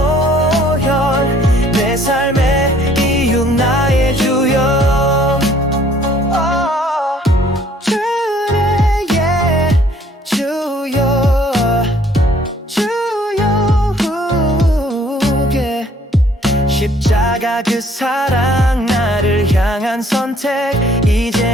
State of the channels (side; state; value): both; normal; correlation 0.60